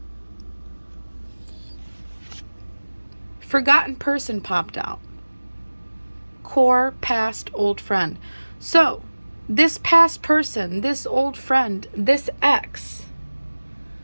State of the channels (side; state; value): both; inverted; correlation -1.00